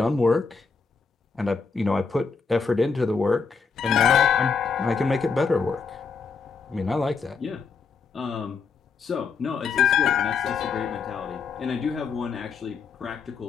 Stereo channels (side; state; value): right; quieter; 5.2 dB